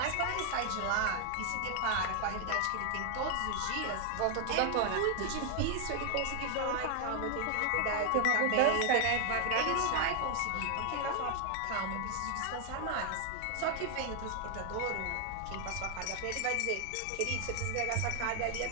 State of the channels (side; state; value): both; different; correlation 0.00